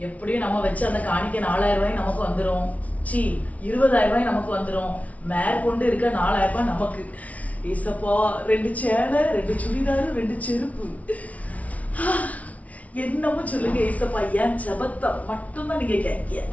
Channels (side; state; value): right; late; 0.068 ms